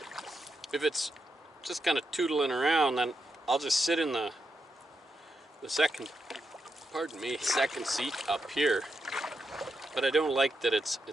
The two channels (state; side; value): normal; both; correlation 0.84